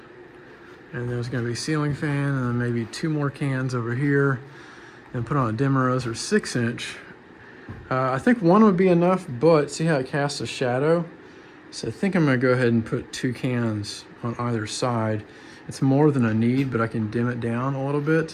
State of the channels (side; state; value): both; identical; correlation 1.00